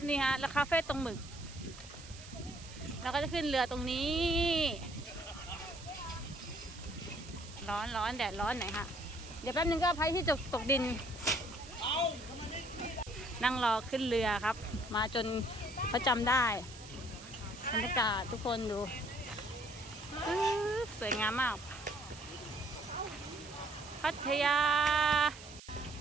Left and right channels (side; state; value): right; noise; hiss, 17 dB below the sound